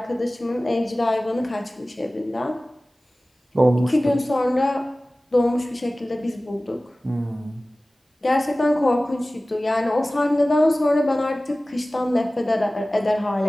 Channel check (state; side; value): normal; both; correlation 0.97